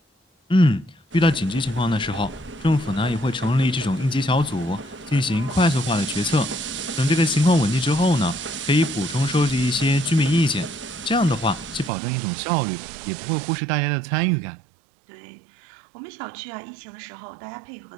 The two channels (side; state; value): left; drops out; at 11.9 s